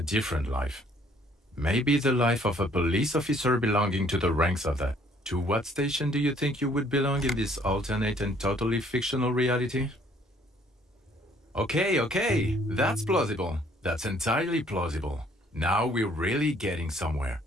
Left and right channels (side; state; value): both; normal; correlation 0.62